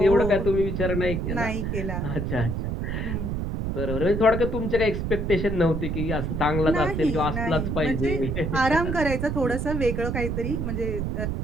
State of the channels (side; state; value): right; noise; rumble, 1 dB below the sound